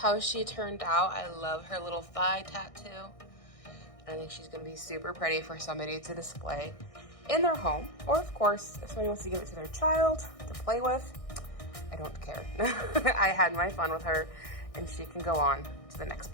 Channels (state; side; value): late; right; 1.6 ms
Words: she turned out. I love her little thigh tattoo. I think she's gonna be super pretty for somebody to display in their home. Or of course, if somebody wants to give it to their child to play with, I don't care. I had my fun with her and she can go on to the next